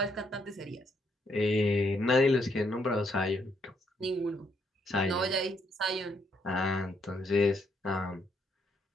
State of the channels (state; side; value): normal; both; correlation 0.74